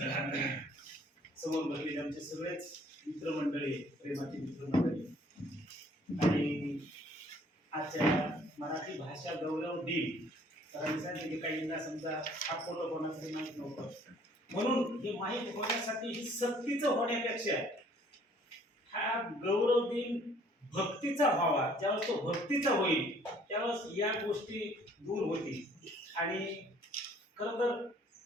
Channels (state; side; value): normal; both; correlation 0.58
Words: समोर बसलेले आमचे सगळेच मित्रमंडळी, प्रेमाची मित्रमंडळी, आणि आजच्या मराठी भाषा गौरव दिन सरांनी सांगितले काहींना समजा हा फोटो कोणासाठी माहीत नव्हतं, म्हणून हे माहीत होण्यासाठी ही सक्तीचं होण्यापेक्षा हा गौरव दिन भक्तीचा व्हावा. ज्यावेळेस तो भक्तीचा होईल त्यावेळेस या गोष्टी दूर होतील. आणि खरं तर